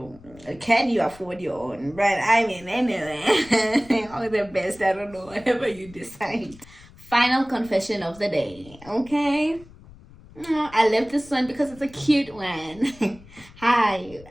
can you afford your own? But I mean, anyway, all the best. I don't know, whatever you decide. Final confession of the day. Okay. I love this one because it's a cute one.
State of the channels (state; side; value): noise; left; rumble, 22 dB below the sound